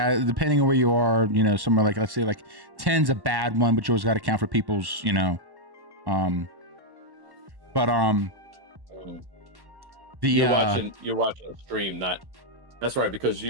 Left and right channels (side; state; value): left; late; 1.1 ms